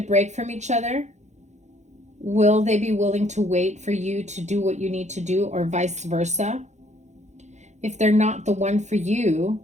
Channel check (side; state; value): left; late; 0.33 ms